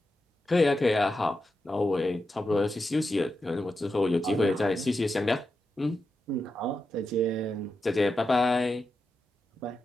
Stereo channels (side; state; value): both; normal; correlation 0.88